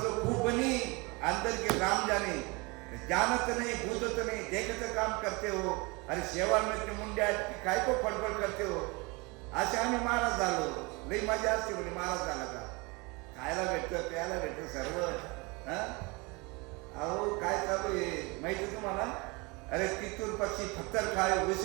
खूप बनी अंदर के राम जाने, जानत नाही भूतत नाही देखत काम करते हो. अरे शेवाळ में मुंड्या काय को फडफड करते हो. असे आम्ही महाराज झालो, लई मजा असते म्हणजे महाराज झाला का, खायला भेटतं प्यायला भेटतं सर्व. अहो काय चालू आहे माहिती तुम्हाला. अरे तिथून पक्षी पत्थर खाए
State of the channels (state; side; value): quieter; left; 27.1 dB